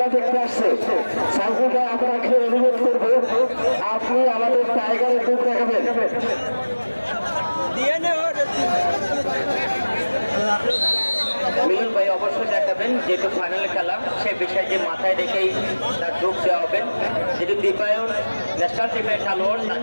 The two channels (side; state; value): both; inverted; correlation -1.00